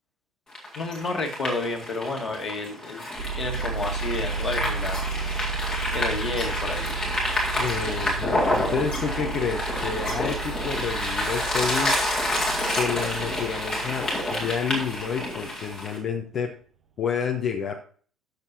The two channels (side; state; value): both; normal; correlation 0.51